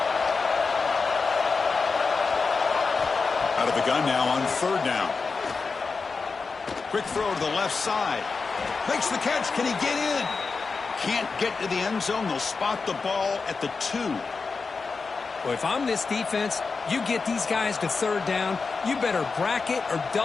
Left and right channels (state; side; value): quieter; right; 4.6 dB